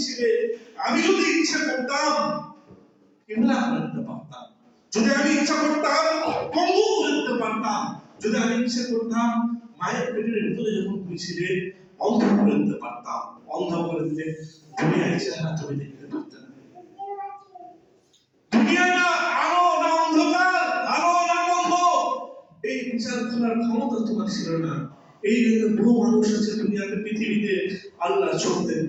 ছিলে, আমি যদি ইচ্ছা করতাম কেমলা করে দিতে পারতাম, যদি আমি ইচ্ছা করতাম পঙ্গু করে দিতে পারতাম, যদি আমি ইচ্ছা করতাম মায়ের পেটের ভিতরে যখন তুমি ছিলে অন্ধ করে দিতে পারতাম। অন্ধ করে দিলে দুনিয়ার চেহারা তুমি দেখতে পারতে না। দুনিয়াটা আলো না অন্ধকার, আলো না বন্ধ, এই বিচার করার ক্ষমতা তোমার ছিল না। এই জন্য বহু মানুষ আছে দুনিয়াতে, পৃথিবীতে আল্লাহ চোখতে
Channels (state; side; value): identical; both; correlation 1.00